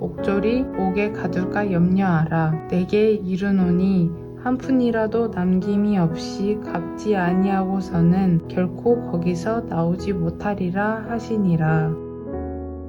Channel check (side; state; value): both; identical; correlation 1.00